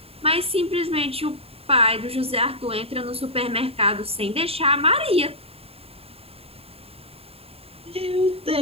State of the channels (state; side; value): late; left; 0.28 ms